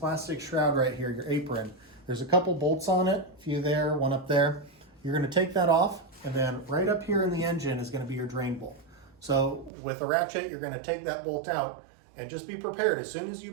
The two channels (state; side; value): drops out; left; at 9.7 s